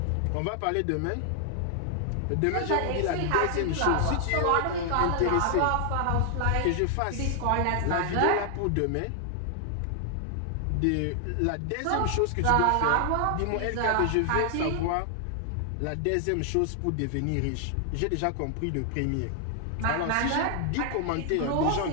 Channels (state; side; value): different; both; correlation 0.00